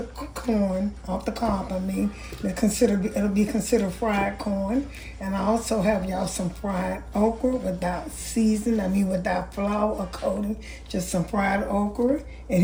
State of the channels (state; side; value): identical; both; correlation 1.00